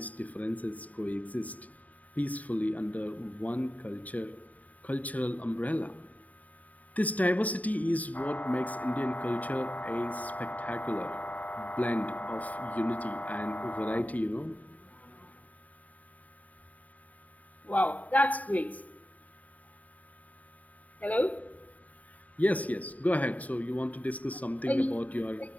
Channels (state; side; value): late; right; 0.072 ms